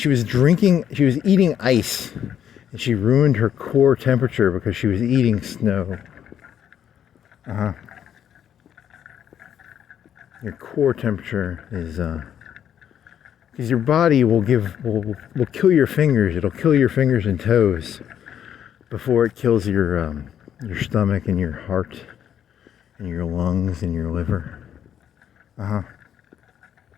she was eating ice, and she ruined her core temperature because she was eating snow. Your core temperature is because your body will kill your fingers. It'll kill your fingers and toes before it kills your stomach and your heart and your lungs and your liver.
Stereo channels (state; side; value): quieter; right; 9.5 dB